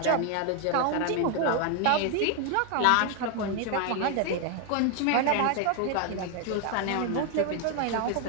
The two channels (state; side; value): different; both; correlation 0.01